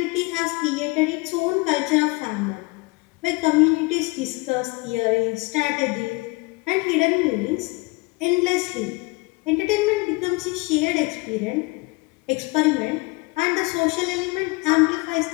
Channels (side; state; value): right; quieter; 25.8 dB